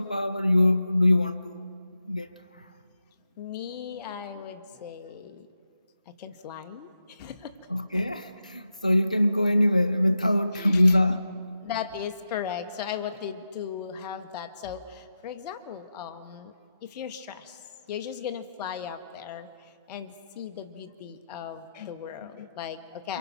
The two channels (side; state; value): both; inverted; correlation -0.89